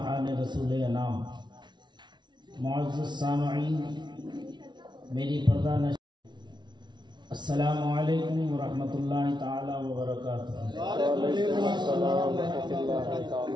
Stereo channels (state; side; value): late; left; 0.21 ms